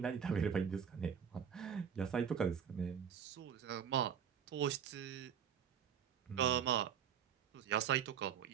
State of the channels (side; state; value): left; quieter; 8.0 dB